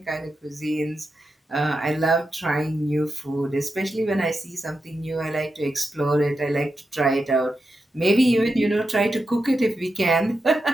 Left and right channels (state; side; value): normal; both; correlation 0.88